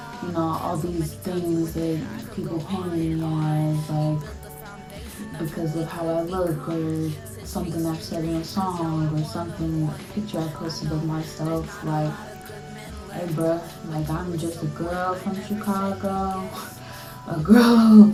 all these things that people paint me as, like, because of how I look or something I've said in a song or something, a picture I posted of myself, like, hey bruh, like I'm just a girl from Chicago, a girl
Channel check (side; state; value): both; identical; correlation 1.00